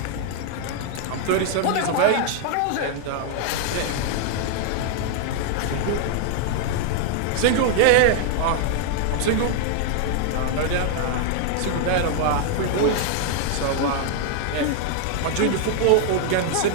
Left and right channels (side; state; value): both; different; correlation 0.00